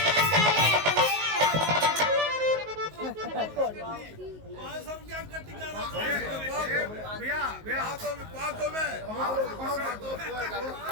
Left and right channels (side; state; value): left; late; 19 ms